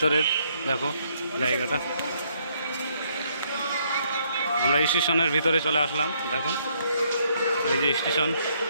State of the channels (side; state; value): both; inverted; correlation -0.70